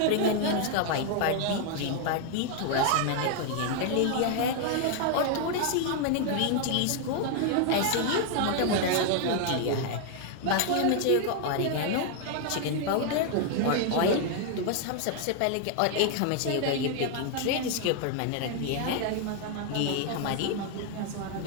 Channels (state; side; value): different; both; correlation 0.00